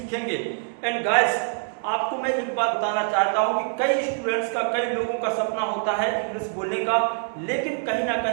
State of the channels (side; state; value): left; silent; 61 dB below the other